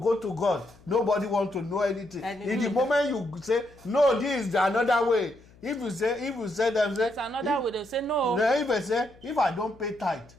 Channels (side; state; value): left; noise; hum, 26 dB below the sound